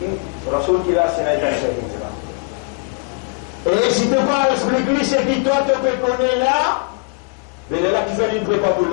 Rasoul qui l'a, c'est un hijra. Et si tu ne peux pas expliquer ce qui toi te connaît là, mais là qui fait une prépa pour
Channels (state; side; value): quieter; right; 32.8 dB